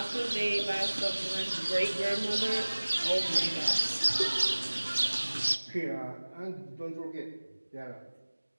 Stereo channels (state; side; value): inverted; both; correlation -1.00